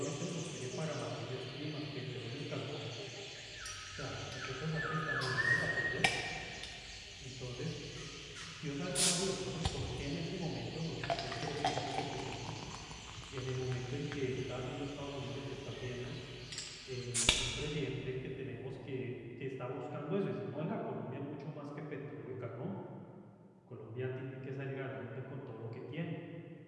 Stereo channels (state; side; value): identical; both; correlation 1.00